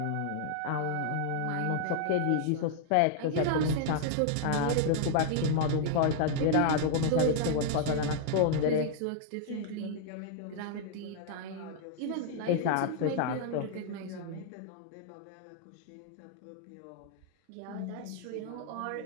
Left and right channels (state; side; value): different; both; correlation -0.01